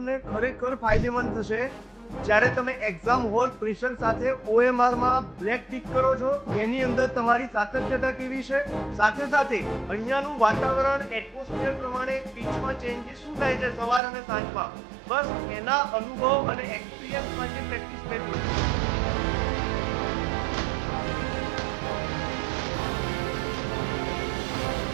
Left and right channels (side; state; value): left; drops out; at 14.0 s